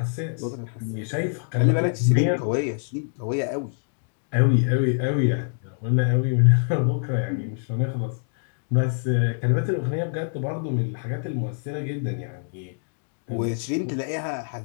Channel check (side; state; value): right; silent; digital silence